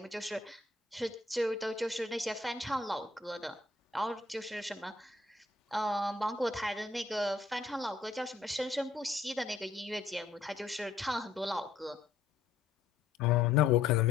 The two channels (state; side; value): quieter; right; 4.1 dB